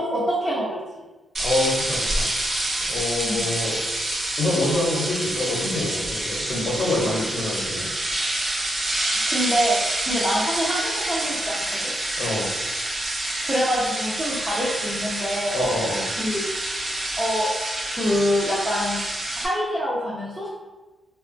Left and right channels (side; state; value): both; normal; correlation 0.81